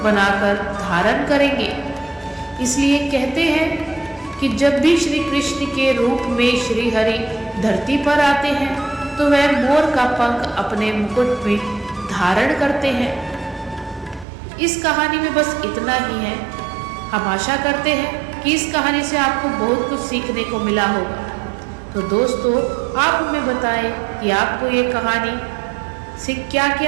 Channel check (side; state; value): left; drops out; at 14.2 s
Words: बनाकर धारण करेंगे। इसलिए कहते हैं कि जब भी श्री कृष्ण के रूप में श्री हरि धरती पर आते हैं तो वह मोर का पंख अपने मुकुट में धारण करते हैं। इस कहानी में बस इतना ही है। हम आशा करते हैं कि इस कहानी से आपको बहुत कुछ सीखने को मिला होगा। तो दोस्तों, आप हमें बताएं कि आपको ये कहानी से क्या